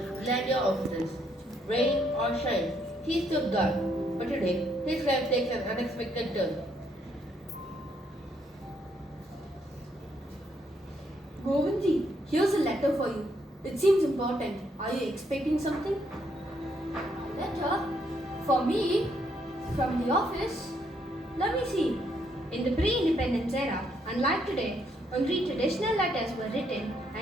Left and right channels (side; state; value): both; normal; correlation 0.73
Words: Glandia offices. Rain or shine, he stood guard. But today, his life takes an unexpected turn. Govindji, here's a letter for you. It seems important. Are you expecting something? Letter? For me? From the office? Let me see. In the pre-independence era, unlike today, only traditional letters were written